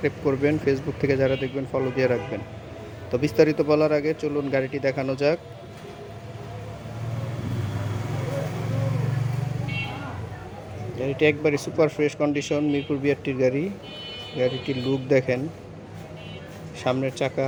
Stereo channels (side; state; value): both; identical; correlation 1.00